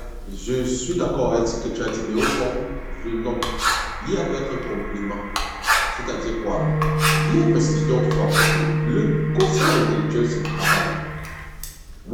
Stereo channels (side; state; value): both; identical; correlation 1.00